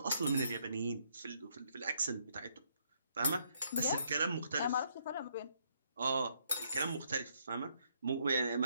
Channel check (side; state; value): both; inverted; correlation -0.72